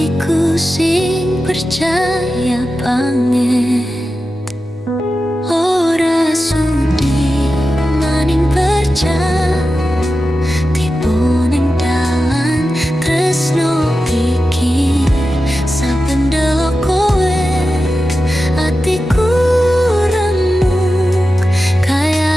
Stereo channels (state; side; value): normal; both; correlation 0.92